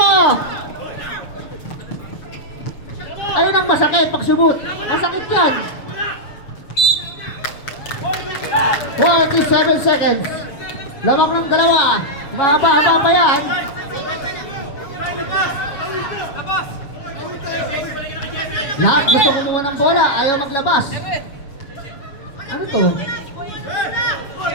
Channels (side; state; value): right; late; 7.3 ms